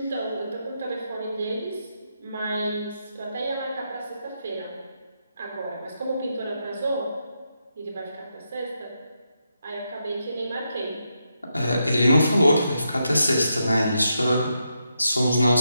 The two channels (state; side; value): inverted; both; correlation -0.83